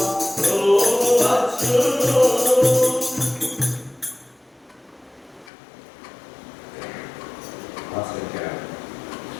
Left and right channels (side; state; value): right; drops out; at 5.5 s